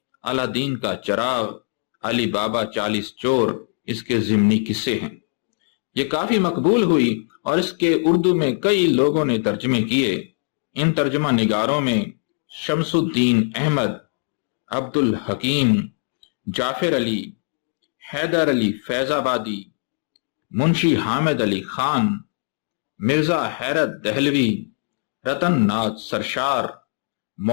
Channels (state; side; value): silent; right; digital silence